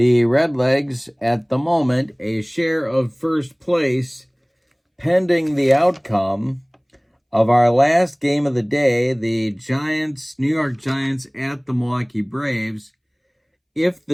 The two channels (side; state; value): both; identical; correlation 1.00